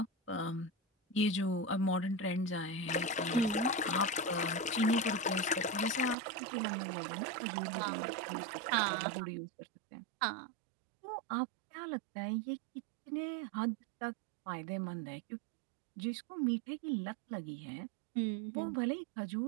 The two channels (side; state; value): left; drops out; at 6.2 s